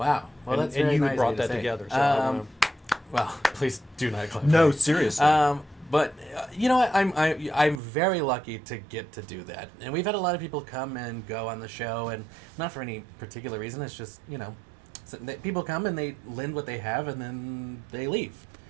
Well, that's very and you nice brought that together. So well, please do not clap. No, seriously. But you know what? I'm very lucky to get to do that, and we've had a lot of people come and go on the show, and not for any particular reason. It's just people come and they lend what they have, and then they leave,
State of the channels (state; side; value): drops out; left; at 7.8 s